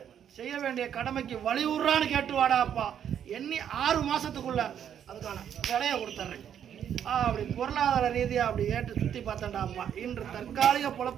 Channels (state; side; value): quieter; left; 9.1 dB